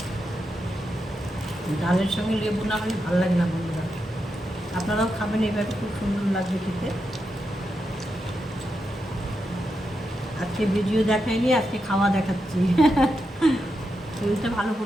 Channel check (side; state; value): both; normal; correlation 0.86